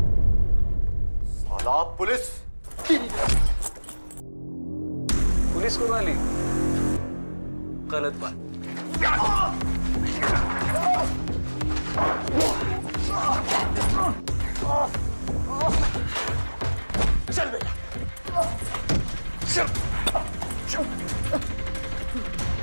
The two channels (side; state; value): both; inverted; correlation -1.00